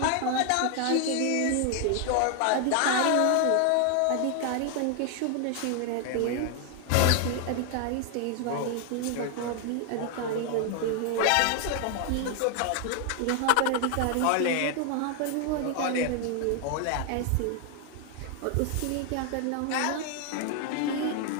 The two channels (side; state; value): both; different; correlation 0.00